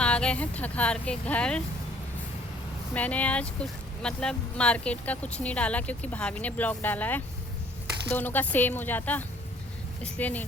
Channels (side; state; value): both; normal; correlation 0.59